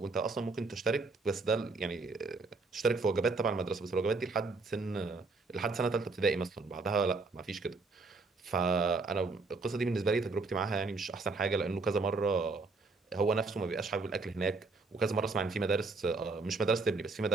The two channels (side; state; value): left; quieter; 3.8 dB